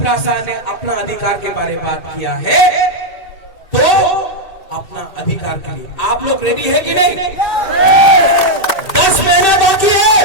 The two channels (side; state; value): right; late; 1.8 ms